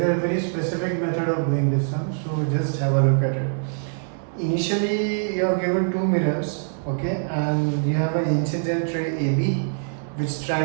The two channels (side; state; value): left; silent; 63 dB below the other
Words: a very specific method of doing this sum, so just have a look at it. Initially, you are given two mirrors, okay, and you have an incident ray AB which